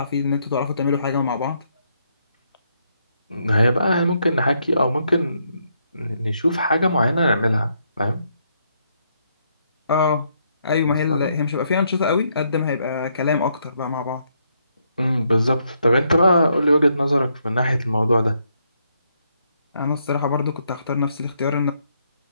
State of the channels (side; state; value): both; inverted; correlation -0.75